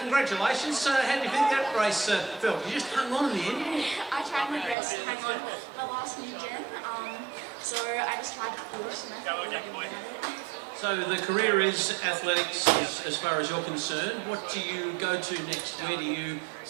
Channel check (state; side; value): drops out; left; at 4.8 s